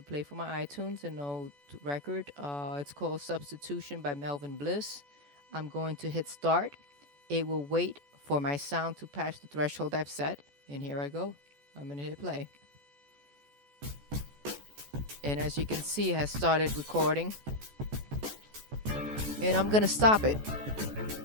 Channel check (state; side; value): late; left; 14 ms